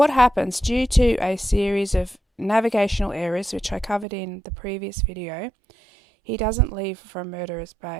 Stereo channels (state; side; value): drops out; left; at 4.0 s